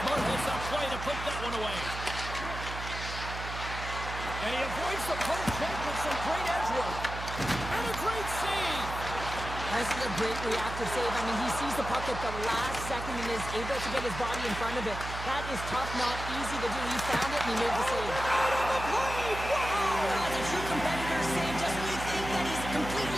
hits that play to put that one away. And he avoids the poke check with some great edge work. And a great save. This is a great reactive save. I mean, he sees the puck at the last second and is able to get his body in front of it. That is tough, not easy to do. He found it and he made the save. Out on the play! Wow! That's a true competitor save. Just when you think that he's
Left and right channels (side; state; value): right; noise; hum, 8 dB below the sound